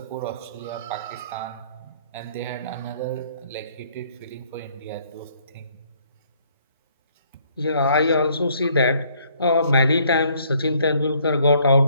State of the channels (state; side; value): inverted; both; correlation -0.64